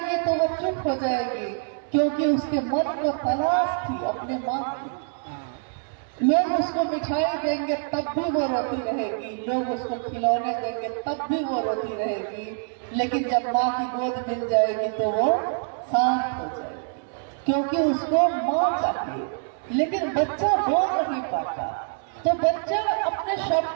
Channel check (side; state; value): left; silent; 60 dB below the other